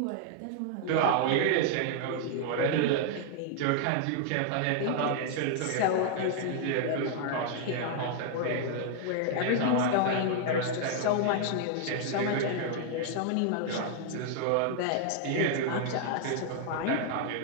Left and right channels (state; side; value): different; both; correlation 0.00